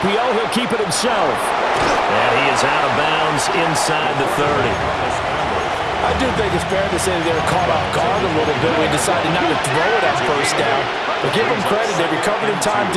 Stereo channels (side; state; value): both; identical; correlation 1.00